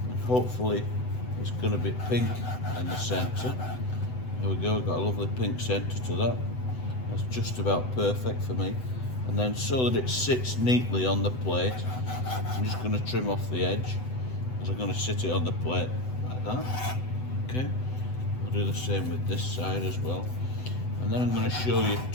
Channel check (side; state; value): right; late; 7.9 ms